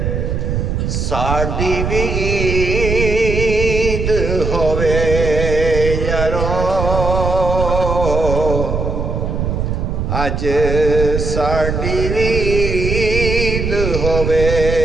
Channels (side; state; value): right; noise; rumble, 1 dB below the sound